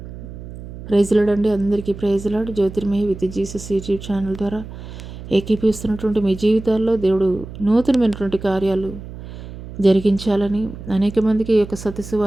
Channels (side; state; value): right; noise; hum, 13 dB below the sound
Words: ప్రైజ్ లార్డ్ అండి. అందరికీ praise lord. Jyothirmayi with Jesus YouTube channel ద్వారా ఏకీపిస్తున్నటువంటి మీ జీవితాల్లో దేవుడు నూతనమైనటువంటి కార్యాలు జరిగించాలని అనేక మందికి ఈ యొక్క సత్య